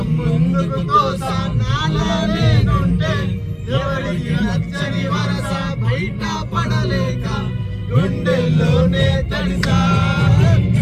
ముందుకు తోసానాలే నేనుంటే ఎవరికి నచ్చని వరస బయట పడలేక గుండెల్లోనే తడిసా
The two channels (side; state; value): both; identical; correlation 1.00